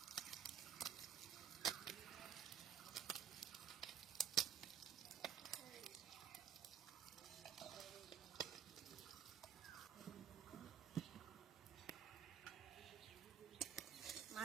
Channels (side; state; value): left; quieter; 8.6 dB